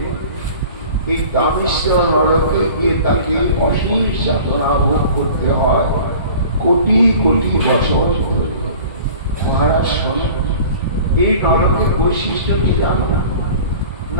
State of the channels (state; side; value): inverted; both; correlation -0.44